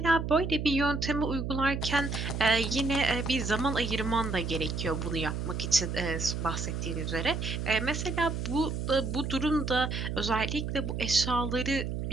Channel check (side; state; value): right; noise; hum, 3 dB below the sound